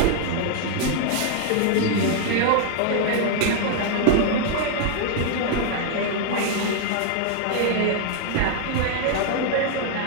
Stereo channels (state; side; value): different; both; correlation 0.00